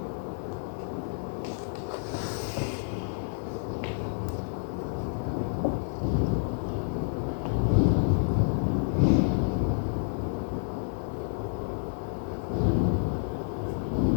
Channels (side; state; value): right; silent; 57 dB below the other